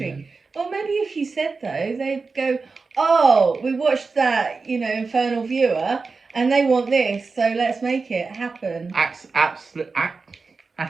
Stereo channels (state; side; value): quieter; left; 4.4 dB